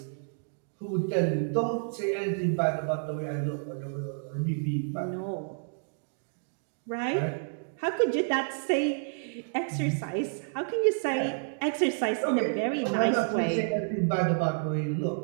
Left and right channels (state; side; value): silent; left; digital silence